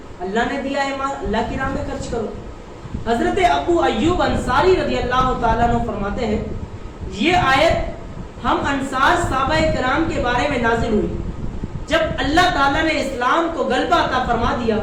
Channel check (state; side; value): identical; both; correlation 1.00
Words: اللہ نے دیا ہے مال، اللہ کی راہ میں خرچ کرو۔ حضرت ابو ایوب انصاری رضی اللہ تعالیٰ عنہ فرماتے ہیں یہ آیت ہم انصار صحابہ کرام کے بارے میں نازل ہوئی جب اللہ تعالیٰ نے اسلام کو غلبہ عطا فرما دیا